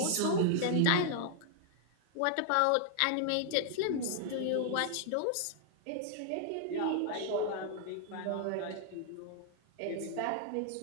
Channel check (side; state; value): both; different; correlation -0.01